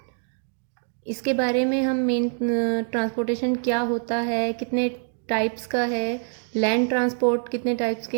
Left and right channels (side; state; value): left; silent; digital silence